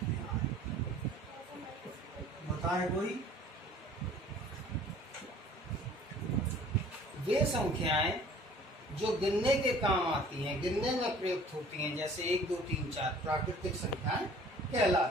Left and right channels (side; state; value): both; normal; correlation 0.51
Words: बताए कोई? वे संख्याएं जो गिनने के काम आती हैं, गिनने में प्रयुक्त होती हैं, जैसे 1, 2, 3, 4 प्राकृतिक संख्याएं